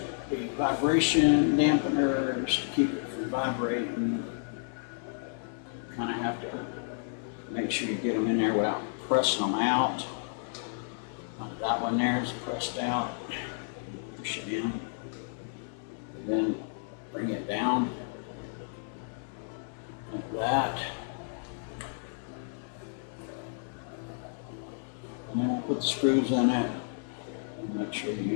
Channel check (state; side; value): silent; right; 57 dB below the other